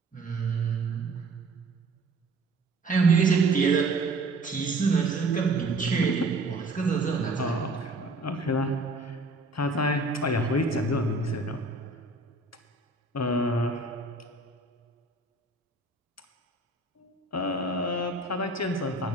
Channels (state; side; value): quieter; left; 3.0 dB